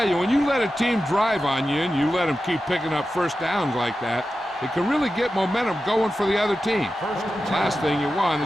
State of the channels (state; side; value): normal; both; correlation 0.92